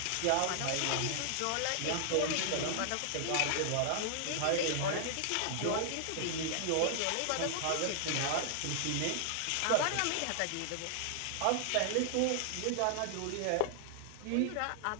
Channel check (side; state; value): both; different; correlation -0.01